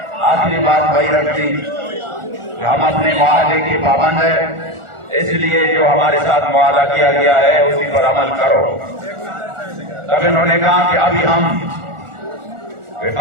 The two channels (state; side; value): late; left; 1.4 ms